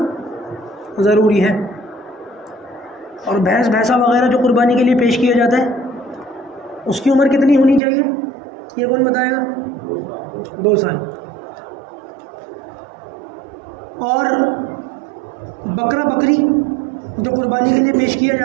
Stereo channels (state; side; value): drops out; left; at 7.8 s